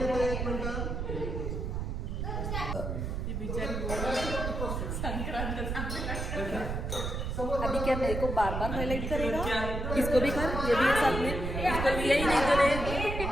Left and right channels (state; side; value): noise; right; rumble, 3 dB below the sound